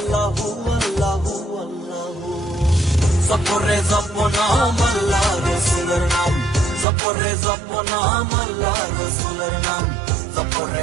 হু আল্লাহ হু আল্লাহ। জপরে জপনাম আল্লাহ রসুলের নাম, জপরে জপনাম আল্লাহ রসুলের নাম,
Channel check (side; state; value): left; drops out; at 6.9 s